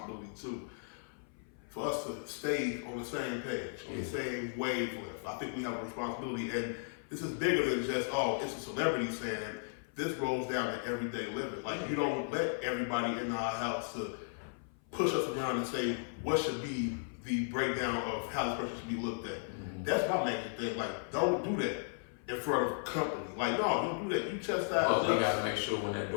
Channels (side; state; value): right; silent; 54 dB below the other